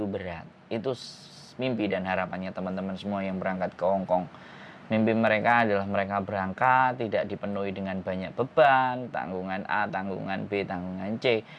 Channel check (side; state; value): both; identical; correlation 1.00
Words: berat. Itu mimpi dan harapannya teman-teman semua yang berangkat ke Hong Kong. Mimpi mereka adalah mereka berangkat tidak dipenuhi dengan banyak beban, tanggungan A, tanggungan B, tanggungan C.